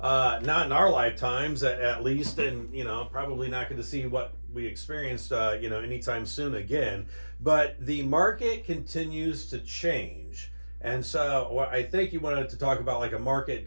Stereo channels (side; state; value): both; inverted; correlation -1.00